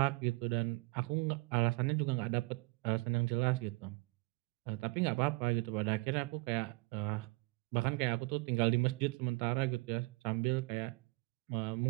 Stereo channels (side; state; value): left; quieter; 26.6 dB